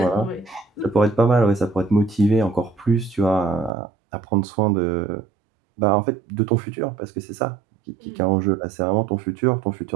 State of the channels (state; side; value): drops out; left; at 3.7 s